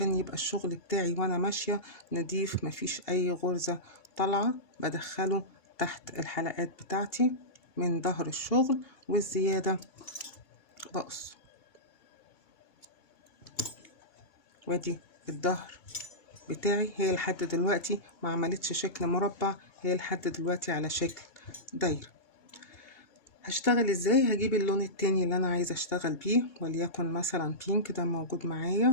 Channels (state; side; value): late; right; 2.8 ms